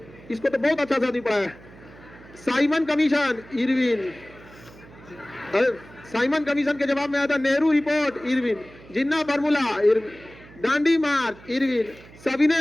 इसको तो बहुत अच्छा से आदमी पढ़ा है। Simon commission, Irwin. Simon commission के जवाब में आया था नेहरू रिपोर्ट, इरविन। जिन्ना फार्मूला, इरविन। दांडी मार्च, इरविन।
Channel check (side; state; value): right; noise; hum, 21 dB below the sound